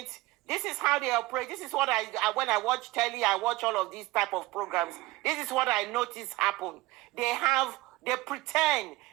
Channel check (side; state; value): left; quieter; 19.6 dB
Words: this is how they operate. This is what when I watch telly, I watch all of these type of programs. This is what I notice happen. They pretend